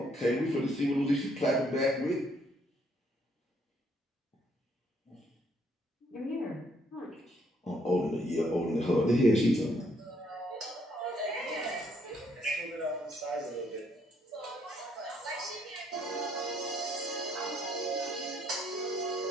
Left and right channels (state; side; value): normal; both; correlation 0.69